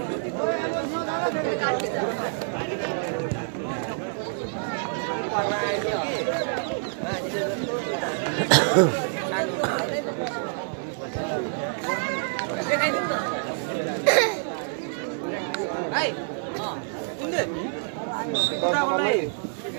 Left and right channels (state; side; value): silent; left; digital silence